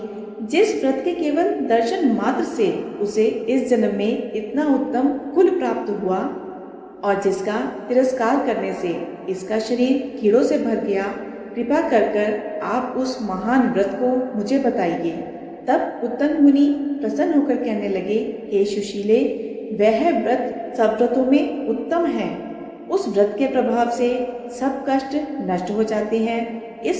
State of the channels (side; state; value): both; identical; correlation 1.00